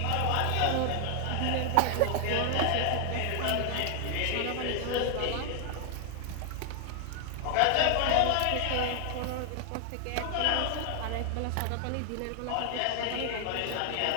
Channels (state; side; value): different; both; correlation 0.00